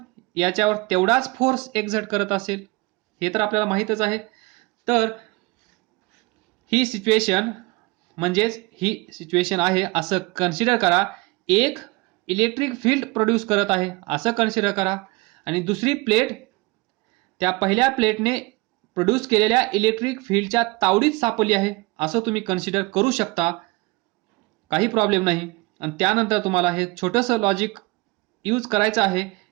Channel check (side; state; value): left; quieter; 24.4 dB